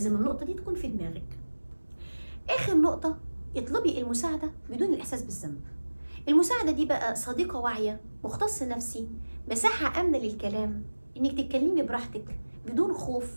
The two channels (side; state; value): both; inverted; correlation -1.00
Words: النقطه دي تكون في دماغك. اخر نقطه، اطلبي المساعدة بدون الإحساس بالذنب. المساعدة دي بقى صديقة واعية، مختص نفسي، مساحة آمنة للكلام، إنك تتكلمي براحتك بدون خوف،